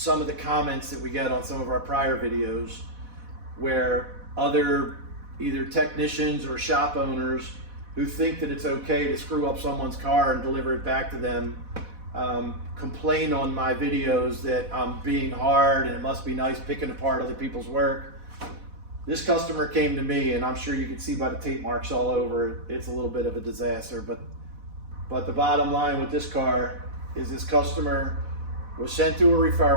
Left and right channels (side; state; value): left; late; 4.1 ms